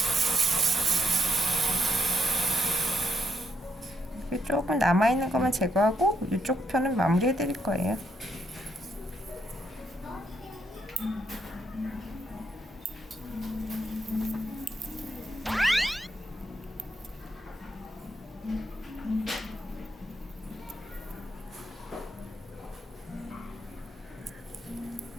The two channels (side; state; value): both; normal; correlation 0.77